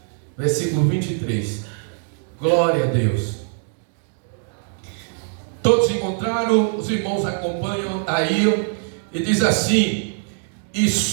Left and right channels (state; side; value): silent; left; 64 dB below the other